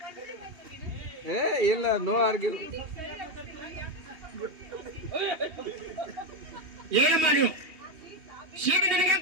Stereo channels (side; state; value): left; late; 2.7 ms